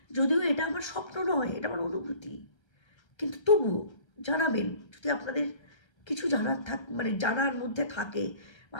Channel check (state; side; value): late; right; 1.3 ms